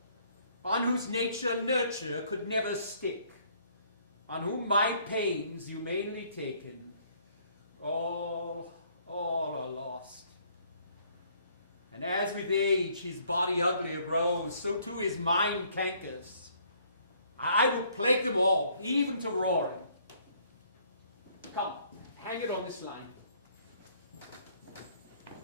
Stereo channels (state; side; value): inverted; both; correlation -0.63